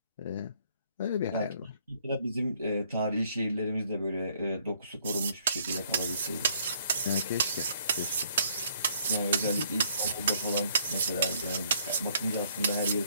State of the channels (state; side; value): inverted; both; correlation -0.65